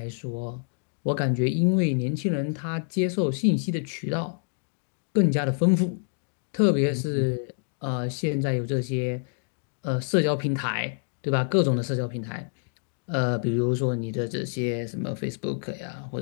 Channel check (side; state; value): right; silent; digital silence